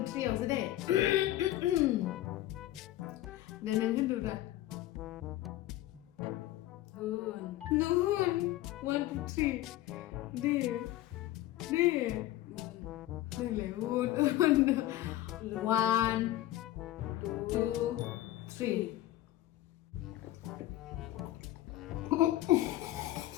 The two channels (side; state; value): right; quieter; 15.0 dB